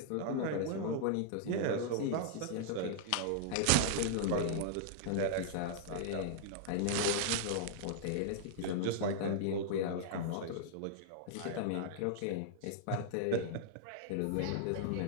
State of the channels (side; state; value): both; different; correlation -0.01